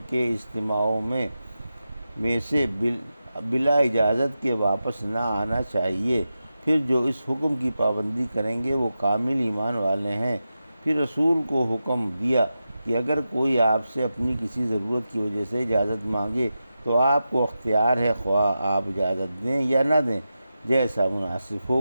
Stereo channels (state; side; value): inverted; both; correlation -0.91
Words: کے اجتماعوں میں سے بلا اجازت کے واپس نہ آنا چاہیے۔ پھر جو اس حکم کی پابندی کریں گے وہ کامل ایمان والے ہیں۔ پھر رسول کو حکم دیا کہ اگر کوئی آپ سے اپنی کسی ضرورت کی وجہ سے اجازت مانگے تو آپ کو اختیار ہے، خواہ آپ اجازت دیں یا نہ دیں، جیسا مناسب